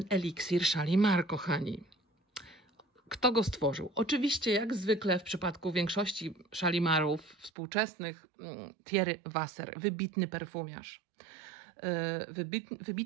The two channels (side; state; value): left; drops out; at 7.5 s